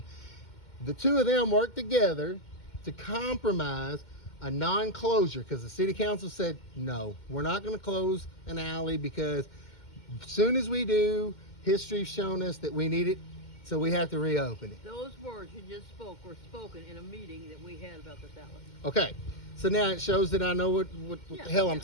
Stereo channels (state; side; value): late; right; 2.1 ms